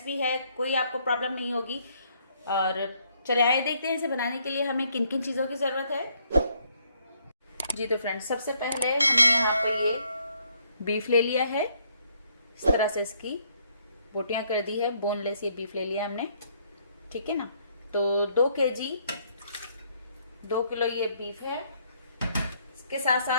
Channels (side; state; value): both; inverted; correlation -0.69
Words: है, कोई आपको प्रॉब्लम नहीं होगी। और चले आए देखते हैं इसे बनाने के लिए हमें किन किन चीज़ों की ज़रूरत है। जी तो फ्रेंड्स, सबसे पहले हमने यहाँ पर ये बीफ ले लिया है। इस तरह से इसकी बोटियाँ कर दी है, बोनलेस ये बीफ ले लिया हमने, ठीक है ना। तो 2 किलो ये बीफ है। इसके साथ